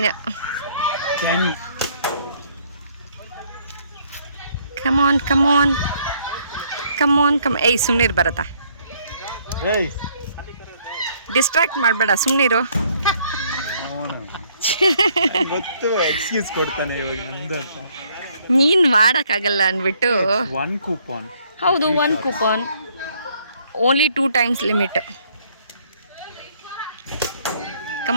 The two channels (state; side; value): inverted; both; correlation -0.66